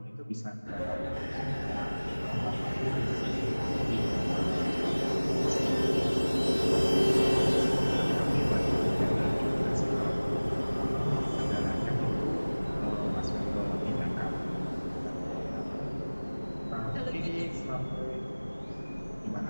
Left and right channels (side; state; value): both; inverted; correlation -1.00